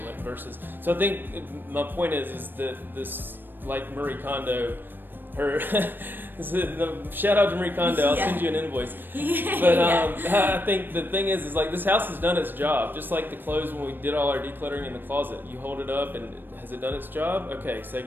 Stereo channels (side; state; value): left; late; 0.094 ms